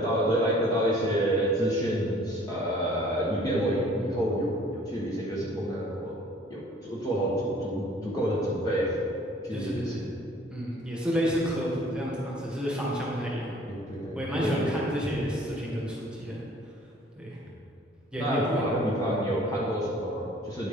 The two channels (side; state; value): both; normal; correlation 0.53